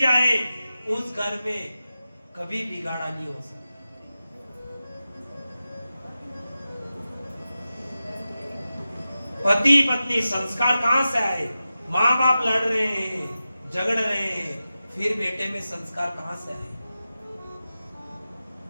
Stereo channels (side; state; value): both; inverted; correlation -0.93